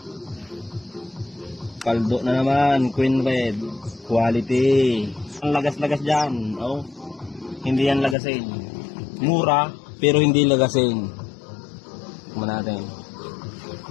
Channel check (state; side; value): drops out; right; at 8.2 s